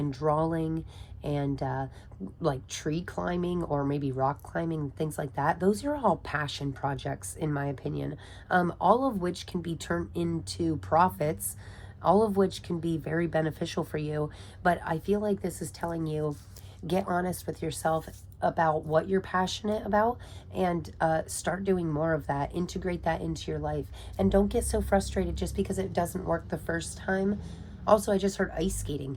drawing and like tree climbing or maybe rock climbing, things like that, those are all passion projects in my opinion, all of which can be turned into profits, all of which can be very beneficial for you. But I feel like this is telling you, get honest with yourself about what you're passionate about and start doing more of that. Integrate that into your life. And don't get so frustrated just because it doesn't work the first time. Also, I just heard ice skating.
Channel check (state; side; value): identical; both; correlation 1.00